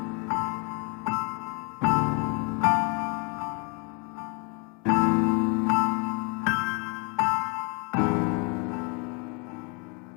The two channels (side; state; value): right; quieter; 33.3 dB